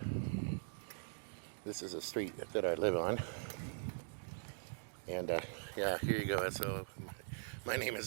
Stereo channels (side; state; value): left; silent; digital silence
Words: This is a street that I live on, and yeah, here you go. So my name